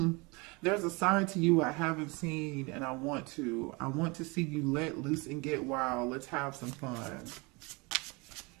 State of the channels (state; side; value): quieter; left; 27.3 dB